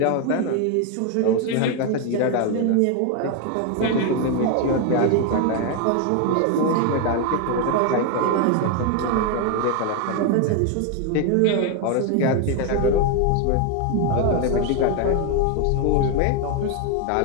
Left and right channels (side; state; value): both; different; correlation 0.01